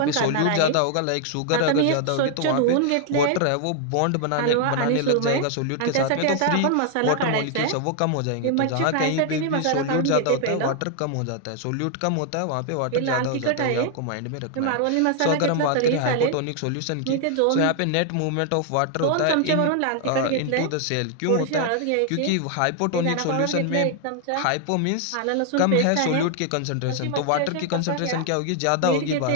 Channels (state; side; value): different; both; correlation 0.00